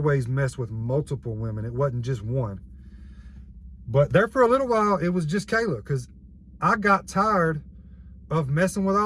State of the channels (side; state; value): both; identical; correlation 1.00